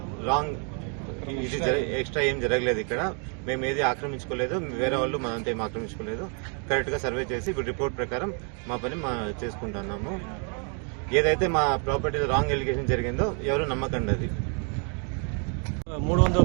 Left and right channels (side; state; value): left; quieter; 39.7 dB